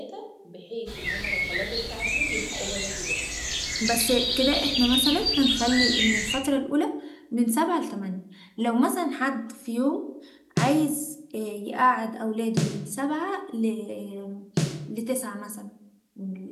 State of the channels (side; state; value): both; identical; correlation 1.00